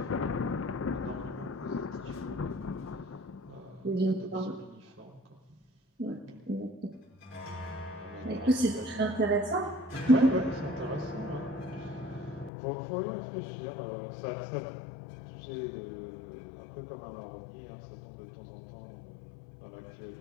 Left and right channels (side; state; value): right; drops out; at 12.5 s